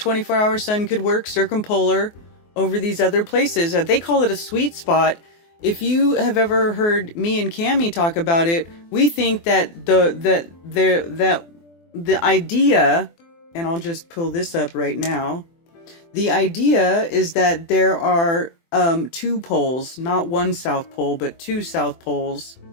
sun could work circumpolar over these other places. They call it a sweet spot. If you have ever heard me and Cammie talk about it, we think that the idea, and I'll just pull this up right now. The idea is that there are two poles, not one South Pole, but two South Poles.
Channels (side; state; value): right; late; 24 ms